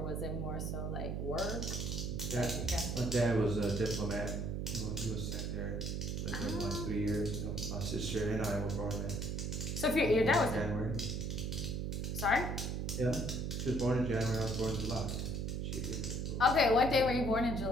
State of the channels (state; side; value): noise; right; hum, 2 dB below the sound